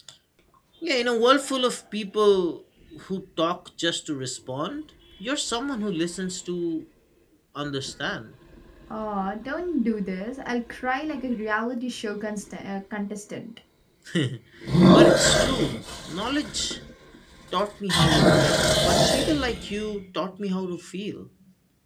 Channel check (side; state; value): both; identical; correlation 1.00